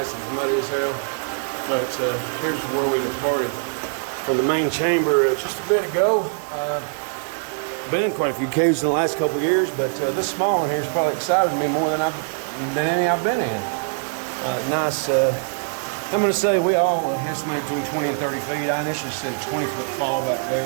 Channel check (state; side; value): silent; left; 64 dB below the other